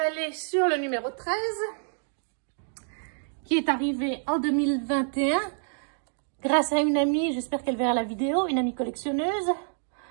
sur le numéro 13, qui est arrivé en 2021, grâce à une amie, j'espère qu'elle verra la vidéo, une amie collectionneuse.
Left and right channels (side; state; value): left; silent; digital silence